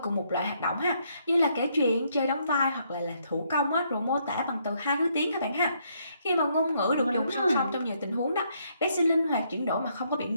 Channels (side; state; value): both; inverted; correlation -0.72